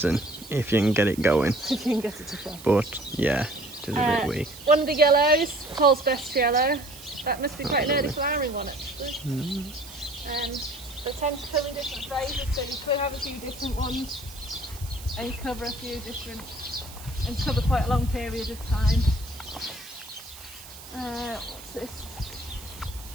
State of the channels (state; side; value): noise; right; hiss, 16 dB below the sound